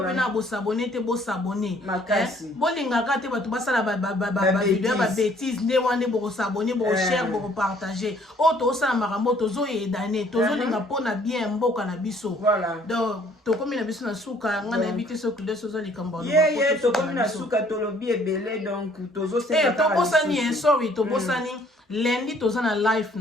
bosabone te bosabone bolingaka te bato basala bavideo ya babétise nde wana nde bokosabone bokoshare bokopartage oyo tozosala makambo tozoyedane tozolinga mpona bien mboka na biso donc tokomi na biso na suka nga nayebi te soki nde sozo likambo ye tokomi na suka tolobi ebele donc tobosani sorry tobosani lundi toza na live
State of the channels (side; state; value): both; normal; correlation 0.60